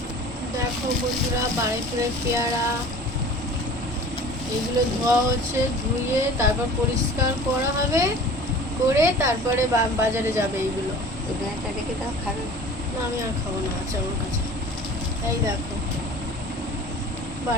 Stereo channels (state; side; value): normal; both; correlation 0.43